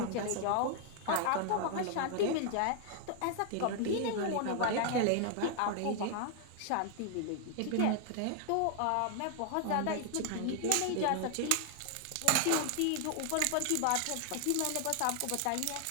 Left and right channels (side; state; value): both; different; correlation 0.00